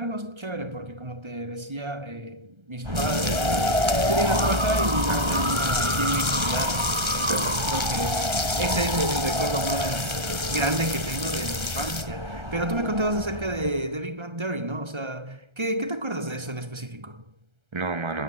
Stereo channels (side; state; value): left; late; 1.3 ms